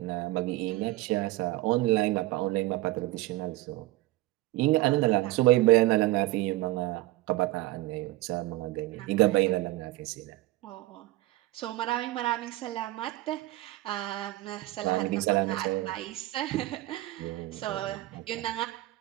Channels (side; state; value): left; quieter; 17.9 dB